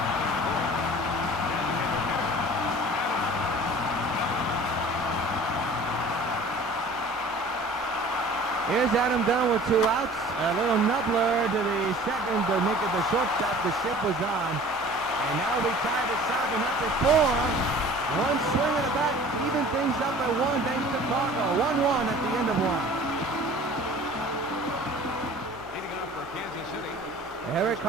Here's Adam Dunn with 2 outs. A little nubbler to the second to make it the shortstop. The ship was on. And now we tied it 7 up at 4. One swing of the bat, even things up at 1 thanks to Chicago. 1-1 at the end of 1. Leading off for Kansas City. Eric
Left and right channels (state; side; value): normal; both; correlation 0.46